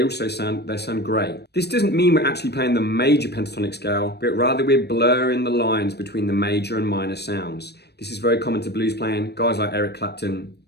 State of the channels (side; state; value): right; late; 0.48 ms